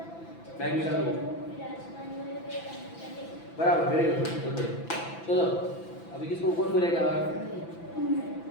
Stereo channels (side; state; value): right; late; 6.0 ms